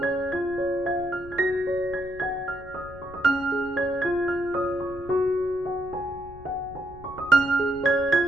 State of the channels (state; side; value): noise; left; rumble, 18 dB below the sound